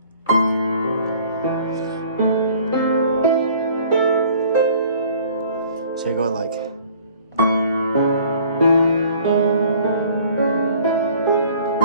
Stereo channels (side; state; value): both; inverted; correlation -0.53